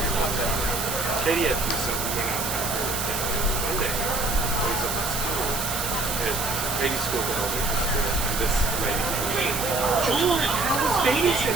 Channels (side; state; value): right; noise; hiss, 3 dB below the sound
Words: longer, I don't know. Katie had to do something. We went out to Monday. I was up at school. At Katie's school, but elementary school, and this lady comes in. George, how was